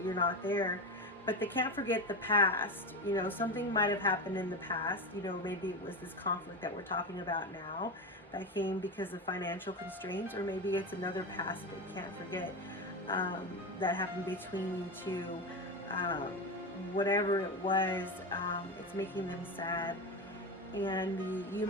You're not there. But they can't forget the past. Something might have happened in the past. Maybe it was this conflict that we're talking about now that came because of financial constraints, or maybe it's another past they can't forget that happened between you two. whatever it was, it's making them sad. And the "you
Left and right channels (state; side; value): normal; both; correlation 0.19